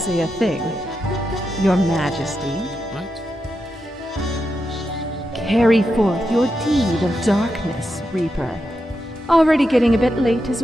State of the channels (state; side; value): normal; both; correlation 0.87